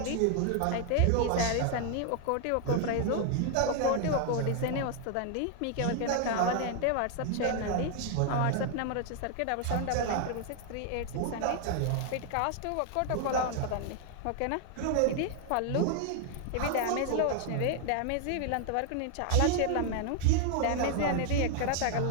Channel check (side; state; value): both; different; correlation 0.00